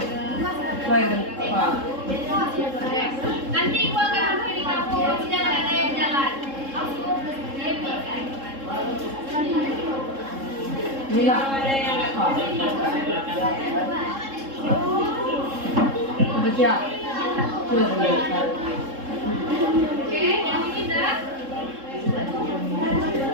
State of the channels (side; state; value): left; late; 3.7 ms